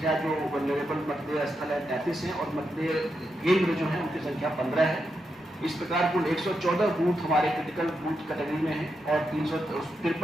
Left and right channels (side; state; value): both; normal; correlation 0.85